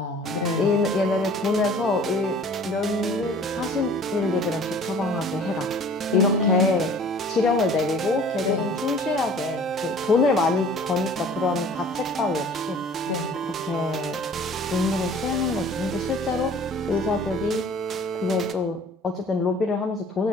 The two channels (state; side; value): normal; both; correlation 0.49